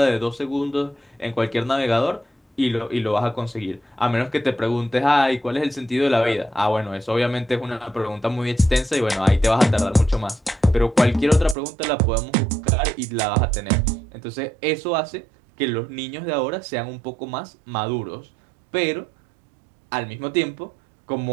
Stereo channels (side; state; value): left; drops out; at 11.6 s